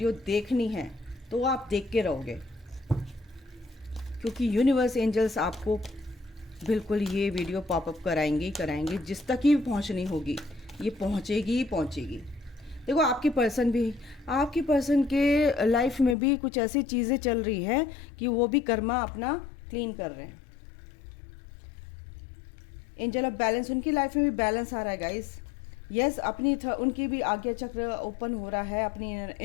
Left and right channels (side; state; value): right; drops out; at 16.2 s